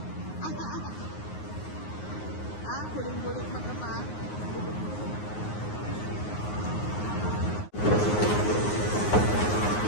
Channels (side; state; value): right; late; 9.6 ms